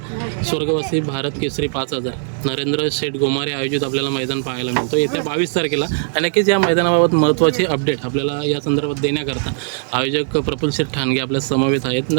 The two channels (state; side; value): silent; left; 67 dB below the other